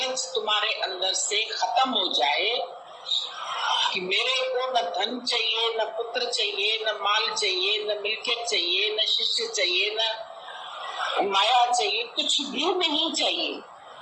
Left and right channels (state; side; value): identical; both; correlation 1.00